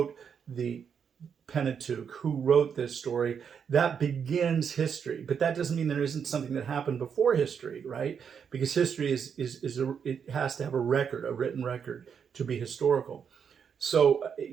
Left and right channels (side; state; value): left; quieter; 7.1 dB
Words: the Pentateuch, who wrote this story. That begins history. But that doesn't mean there isn't something that happened before history, right? Because history it has to have a record, a written record, to be historical. So,